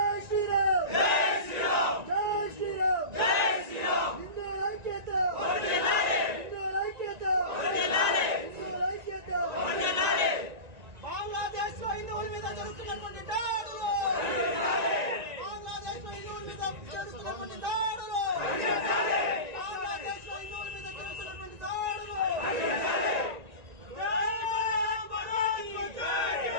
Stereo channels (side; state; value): left; late; 1.9 ms